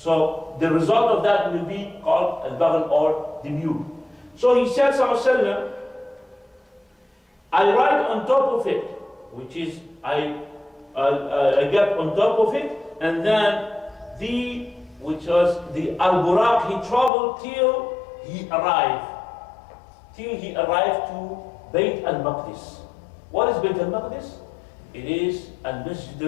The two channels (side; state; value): right; drops out; at 17.1 s